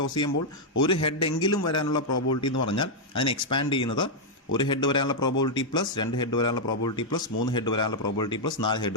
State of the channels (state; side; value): normal; both; correlation -0.03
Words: toss ചെയ്യുമ്പോൾ ഒരു head എങ്കിലും വരാനുള്ള probability എന്ന് പറഞ്ഞാൽ അതിനെ expand ചെയ്യുന്നത് ഒരു ഹെഡ് വരാനുള്ള പ്രോബബിലിറ്റി പ്ലസ് 2 ഹെഡ് വരാനുള്ള പ്രോബബിലിറ്റി പ്ലസ് 3 ഹെഡ് വരാനുള്ള പ്രോബബിലിറ്റി പ്ലസ് 4